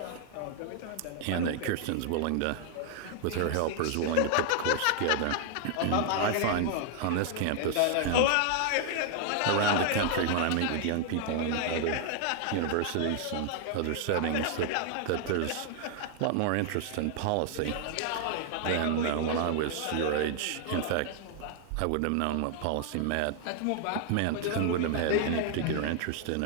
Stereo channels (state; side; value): different; both; correlation 0.00